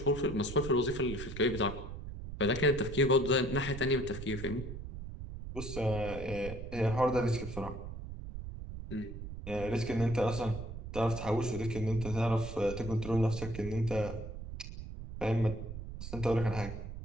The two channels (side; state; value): right; noise; rumble, 9 dB below the sound